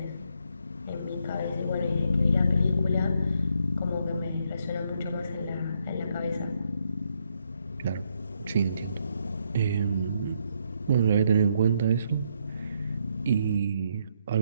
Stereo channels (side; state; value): both; inverted; correlation -0.76